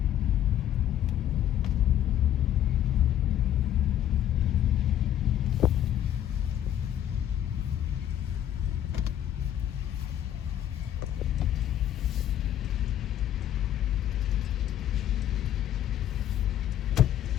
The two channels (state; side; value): quieter; right; 11.1 dB